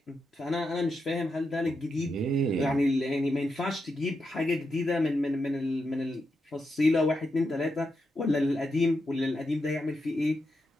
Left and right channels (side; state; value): both; normal; correlation 0.85